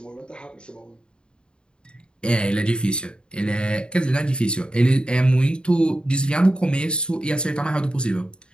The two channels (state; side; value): late; right; 0.051 ms